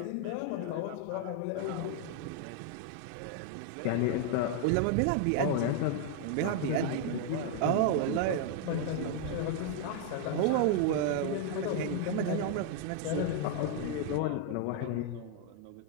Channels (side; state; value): both; different; correlation 0.00